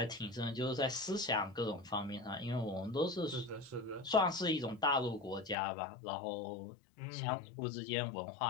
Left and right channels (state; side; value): drops out; right; at 5.6 s